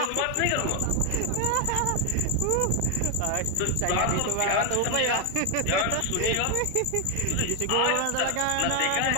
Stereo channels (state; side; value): different; both; correlation 0.01